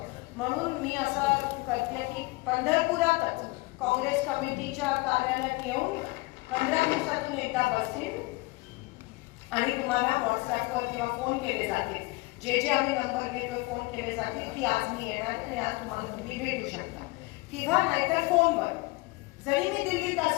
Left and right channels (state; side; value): quieter; right; 23.7 dB